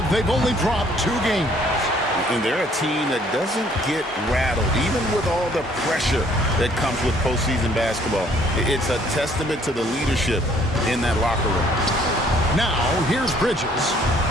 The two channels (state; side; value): normal; both; correlation 0.61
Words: They've only dropped 2 games. And they're a team that doesn't get rattled, even with all the pressure that comes with postseason basketball. It's a testament to the leadership in that locker room. Now, here's Bridges.